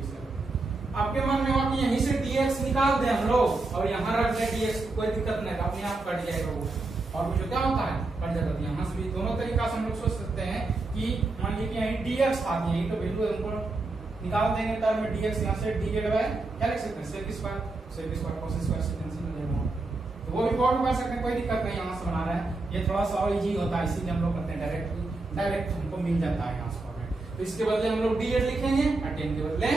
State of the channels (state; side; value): quieter; left; 3.3 dB